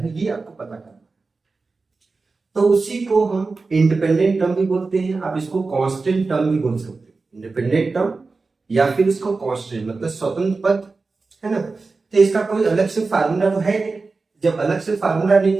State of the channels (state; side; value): quieter; left; 4.0 dB